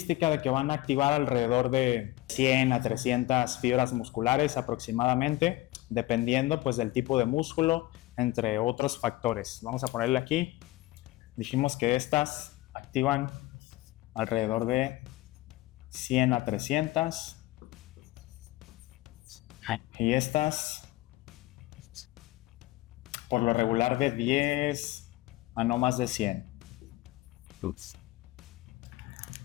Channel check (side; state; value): right; quieter; 18.1 dB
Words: de que van a activar alrededor de 100 a 300 fibras musculares aproximadamente, dependiendo pues del tipo de músculo, entre otros factores. Vamos a ponerle aquí. Dijimos que estas activan alrededor de 100 a 300 y estas por lo regular de 10 a no más de 100.